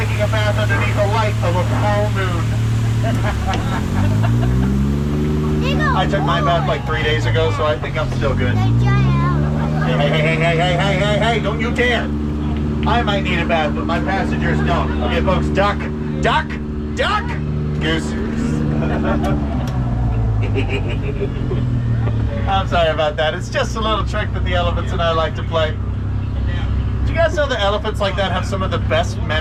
a bath underneath the light of a full moon. I took my bath like 3 days ago, so I think I'm still good. Hey, don't you dare. I might need a bath, but my passengers don't. Okay, folks, duck, goose. I'm sorry about that. It's just a little trick that the elephants and I like to play. Do you guys know that elephants like that have some of the best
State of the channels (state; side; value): identical; both; correlation 1.00